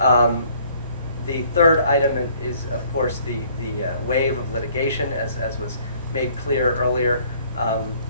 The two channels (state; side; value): inverted; both; correlation -0.59